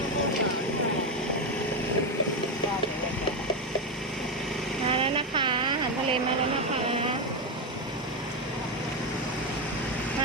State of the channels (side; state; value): both; normal; correlation 0.10